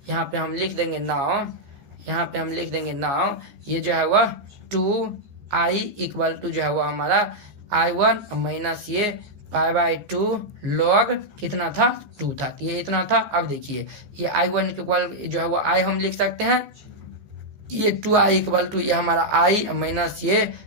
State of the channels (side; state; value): left; late; 14 ms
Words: पे हम लिख देंगे नाउ, ये जो है वह 2i इक्वल टू जो है वो हमारा i1 माइनस ये पाई बाई 2 log कितना था 2 था, तो ये इतना था। अब देखिए ये i1 इक्वल जो है वो i हम लिख सकते हैं, ये 2i इक्वल टू ये हमारा i माइनस ये